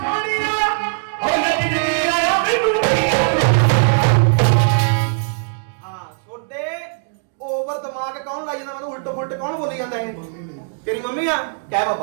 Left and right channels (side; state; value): left; silent; digital silence